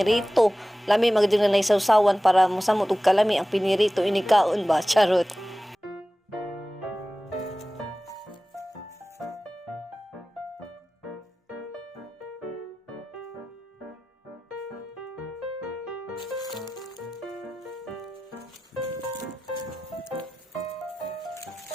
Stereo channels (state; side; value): normal; both; correlation 0.96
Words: Lami magdi na naisawsawan para mosamot og kalami ang pinirito inikaon ba charot.